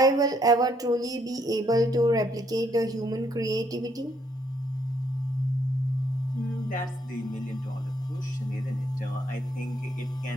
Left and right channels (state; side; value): normal; both; correlation 0.70